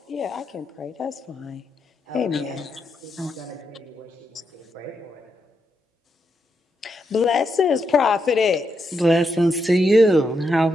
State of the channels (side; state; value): both; normal; correlation 0.82